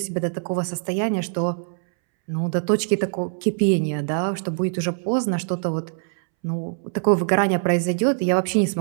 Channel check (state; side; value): silent; left; 63 dB below the other